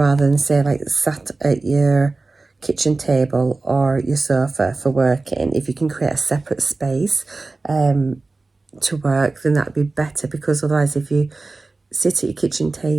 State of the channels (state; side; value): quieter; left; 3.5 dB